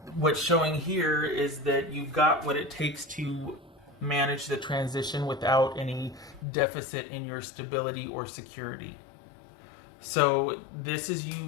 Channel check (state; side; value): drops out; right; at 6.5 s